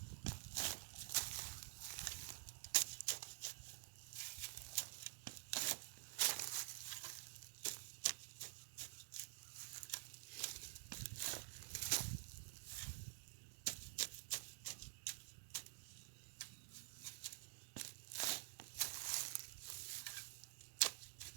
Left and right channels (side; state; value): left; silent; digital silence